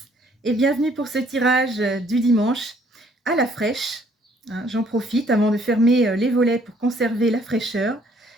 et bienvenue pour ce tirage du dimanche à la fraîche. J'en profite avant de fermer les volets pour conserver la fraîcheur.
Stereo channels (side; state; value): both; normal; correlation 0.63